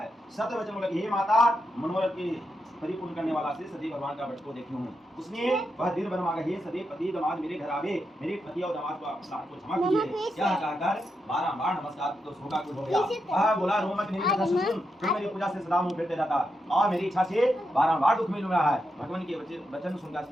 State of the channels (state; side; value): normal; both; correlation 0.85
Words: सत्य वचन लगी, हे माता मनोरथ की परिपूर्ण करने वाला से सदैव भगवान का भक्त को देखी हूँ। उसने वह दिल बन मांगा, हे सदैव पति दामाद मेरे घर आवे, मेरे पति और दामाद को क्षमा कीजिए। यह कहकर बारंबार नमस्कार तो शोका कुल हो गया। वह बोला, रो मत, मेरी कथा सुन, तू मेरी पूजा से सदा मुंह फेरते रहता और मेरी इच्छा से बारंबार दुख मिल रहा है। भगवान के वचन सुनकर